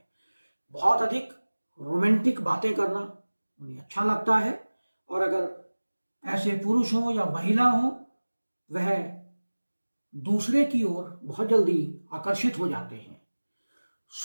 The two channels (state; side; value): inverted; both; correlation -1.00